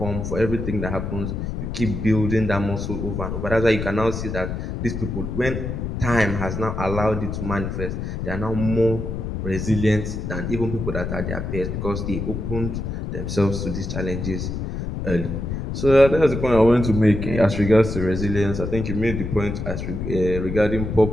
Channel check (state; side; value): noise; left; rumble, 4 dB below the sound